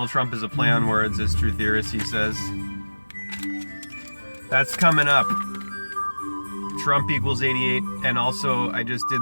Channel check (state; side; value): inverted; both; correlation -1.00